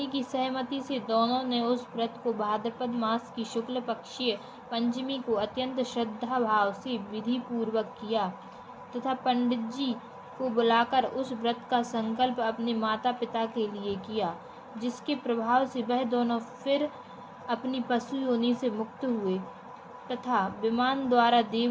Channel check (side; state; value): both; identical; correlation 1.00